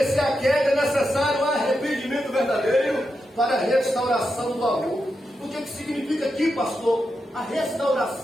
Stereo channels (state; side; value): normal; both; correlation 0.87